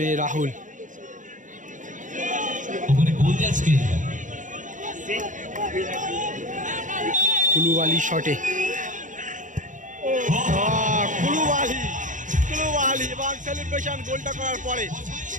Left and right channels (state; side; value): late; left; 0.37 ms